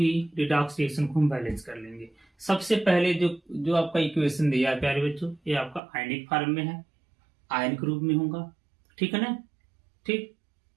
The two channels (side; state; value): left; drops out; at 5.8 s